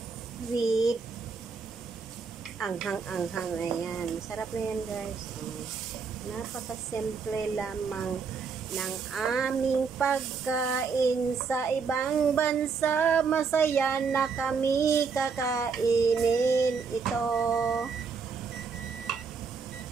with anghang-anghang. Ayan. Sarap na yan, guys. Napakasimple lamang ng aming pagkain sa ibang bansa. Masaya na kami kakainin ito.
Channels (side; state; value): left; quieter; 5.4 dB